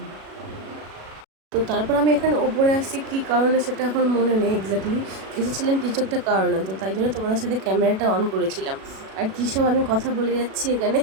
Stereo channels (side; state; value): left; late; 37 ms